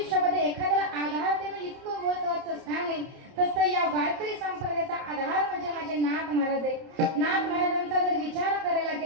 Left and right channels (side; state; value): left; late; 31 ms